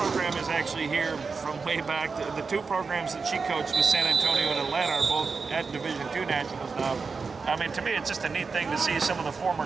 is actually here from way back. The two programs that she coached with San Antonio and Atlanta are both at Division II Nationals now. I mean, to me, it's just a neat thing to see some of the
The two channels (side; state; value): left; quieter; 4.8 dB